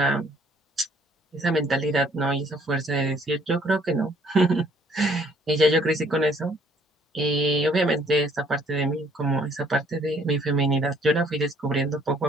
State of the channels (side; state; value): both; normal; correlation 0.62